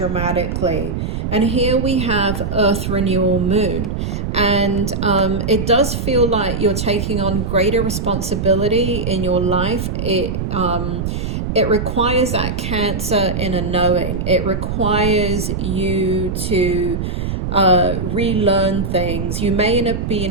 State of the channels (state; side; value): noise; right; rumble, 3 dB below the sound